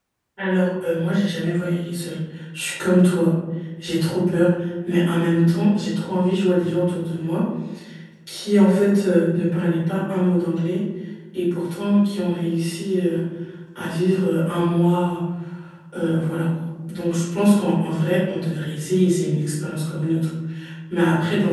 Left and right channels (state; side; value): identical; both; correlation 1.00